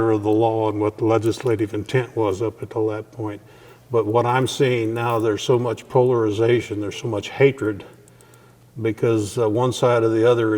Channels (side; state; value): both; identical; correlation 1.00